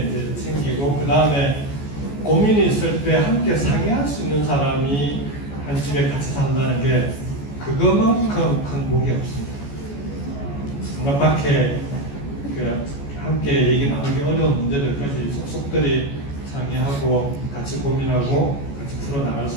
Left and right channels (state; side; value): late; right; 14 ms